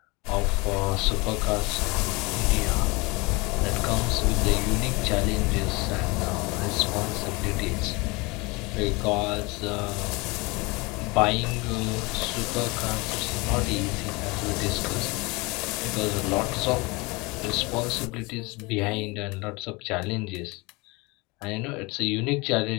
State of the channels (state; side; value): quieter; right; 25.6 dB